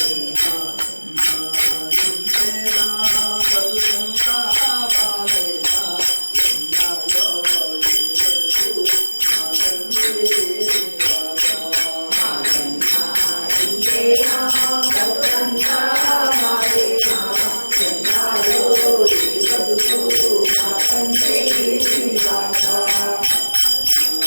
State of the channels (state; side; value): inverted; both; correlation -1.00